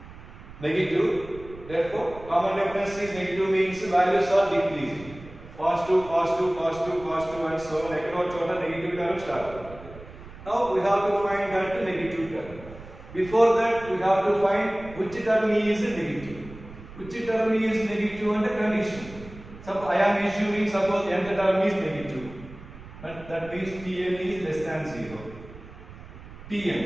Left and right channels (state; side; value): noise; right; rumble, 17 dB below the sound